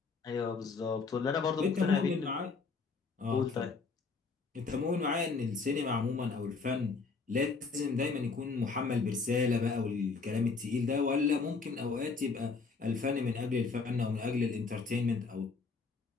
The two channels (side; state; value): right; quieter; 4.6 dB